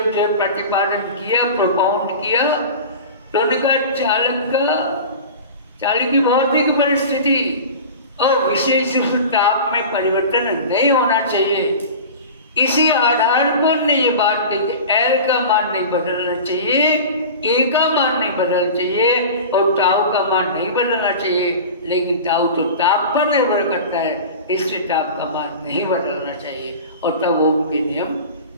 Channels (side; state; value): both; inverted; correlation -0.34